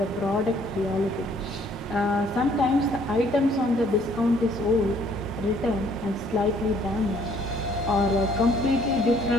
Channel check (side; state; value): both; normal; correlation 0.62